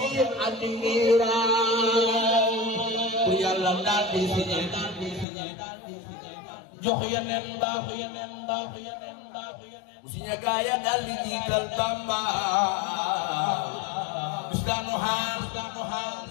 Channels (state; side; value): drops out; right; at 5.2 s